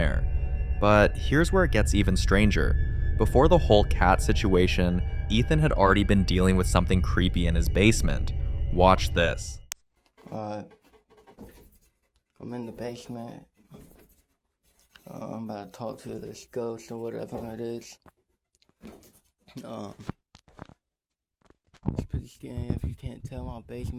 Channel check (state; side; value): identical; both; correlation 1.00